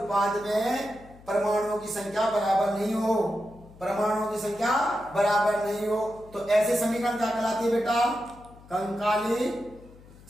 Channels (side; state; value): left; noise; hum, 22 dB below the sound